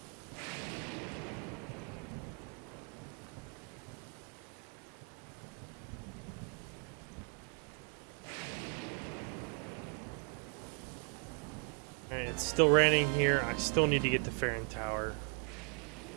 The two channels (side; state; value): left; quieter; 39.9 dB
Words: Alright, it's still raining here. I still need to get to Farron Tower.